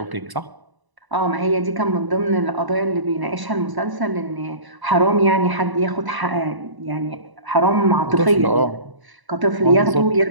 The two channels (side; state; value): left; late; 1.0 ms